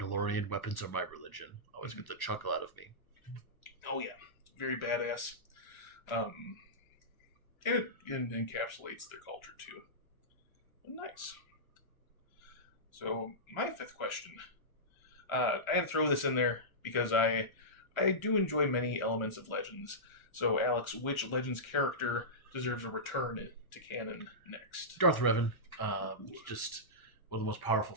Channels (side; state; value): right; late; 1.2 ms